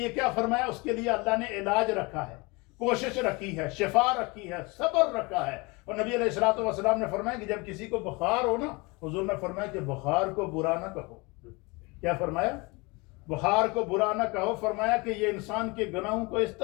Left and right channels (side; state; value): right; quieter; 26.4 dB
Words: کیا فرمایا؟ اس کے لیے اللہ نے علاج رکھا ہے، کوشش رکھی ہے، شفا رکھی ہے، صبر رکھا ہے۔ اور نبی علیہ الصلوۃ والسلام نے فرمایا کہ جب کسی کو بخار ہو نا، حضور نے فرمایا کہ بخار کو برا نہ کہو۔ کیا فرمایا؟ بخار کو برا نہ کہو۔ فرمایا کہ یہ انسان کے گناہوں کو اس